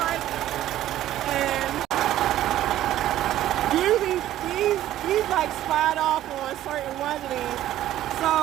and usually these like slide off on certain ones of these.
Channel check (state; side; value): quieter; left; 13.2 dB